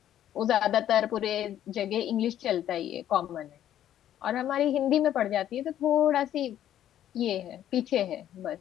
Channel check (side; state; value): right; quieter; 11.4 dB